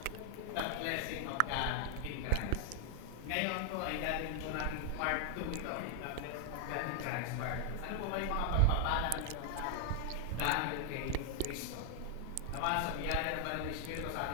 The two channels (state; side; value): different; both; correlation 0.00